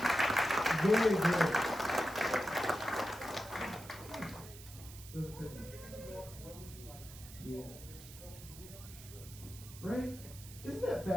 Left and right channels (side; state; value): right; noise; hiss, 16 dB below the sound